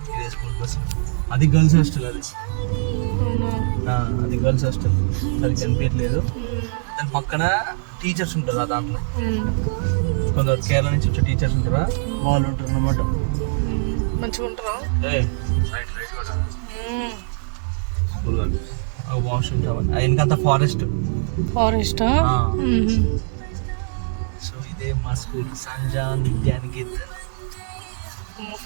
ఇదే స్కూల్ బస్. అది గర్ల్స్ హాస్టల్. అది అది గర్ల్స్ హాస్టల్. సరిగ్గా కనిపించట్లేదు. దాని పక్కన టీచర్స్ ఉంటారు. దాంట్లో కొందరు కేరళ నుంచి వచ్చే టీచర్స్ ఉంటారా, వాళ్ళు ఉంటారు అన్నమాట. మంచిగా ఉంటారా? వాష్రూమ్స్ అవన్నీ వెనకంతా ఫారెస్టా? సో ఇదే మా స్కూల్, సంజాన్ విద్యానికేతన్.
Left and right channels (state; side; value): silent; left; 64 dB below the other